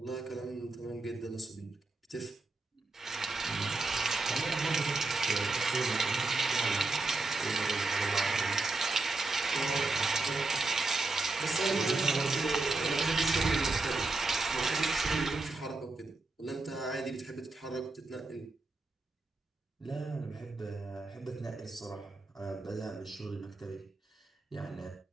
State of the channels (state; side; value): quieter; left; 3.4 dB